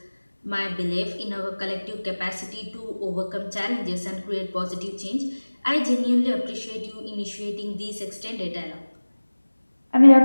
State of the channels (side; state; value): both; inverted; correlation -1.00